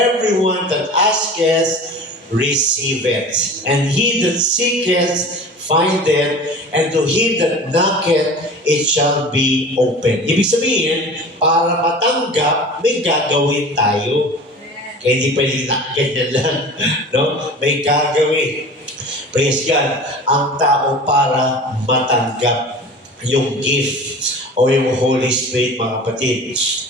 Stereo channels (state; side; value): normal; both; correlation 0.38